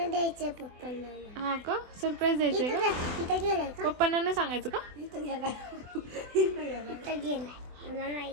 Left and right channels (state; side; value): late; left; 24 ms